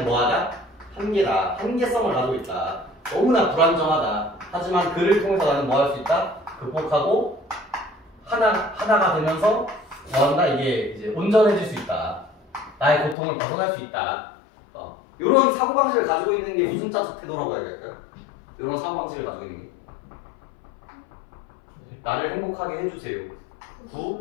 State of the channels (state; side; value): drops out; right; at 13.2 s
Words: 뭐하다? 한계다. 한계성을 가지고 있다. 너무나 불안정하다. 하지만 그를 통해서 나는 뭐 할 수 있다? 극복하고 하나가 되면서 뭐한다? 이게 이제 온전해질 수 있다. 나의 고통을 벗어날 수 있다. 이런 사고방식을 가지고 있는 게 무슨 자적 태도라고 해야 될까요? 이런 사고방식을 가지고 있는 게 나를 행복하게 해주세요.